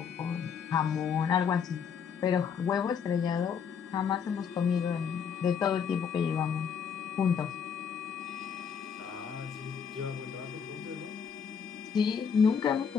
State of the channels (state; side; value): quieter; right; 7.0 dB